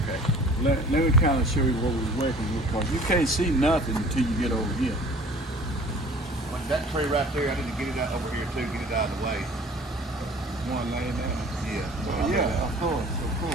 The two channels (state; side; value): normal; both; correlation 0.48